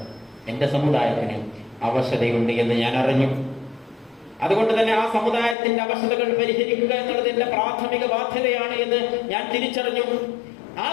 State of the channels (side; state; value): right; drops out; at 5.6 s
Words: എന്റെ സമുദായത്തിന് അവശതയുണ്ട് എന്ന് ഞാൻ അറിഞ്ഞു. അതുകൊണ്ട് തന്നെ ആ സമുദായത്തിന്റെ അവശതകൾ പരിഹരിക്കുക എന്നുള്ളത് എന്റെ പ്രാഥമിക ബാധ്യതയാണ് എന്ന് ഞാൻ തിരിച്ചറിഞ്ഞു. ആ